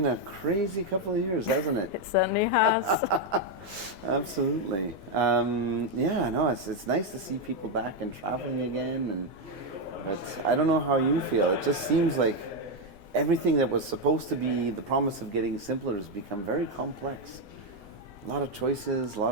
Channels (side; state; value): both; normal; correlation 0.04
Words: a crazy couple of years, hasn't it? It certainly has. Absolutely. Yeah, no, it's nice to see people back and traveling again. But I don't know how you feel. It just seems like everything that was supposed to be the promise of getting simpler has become very complex. A lot of choices, a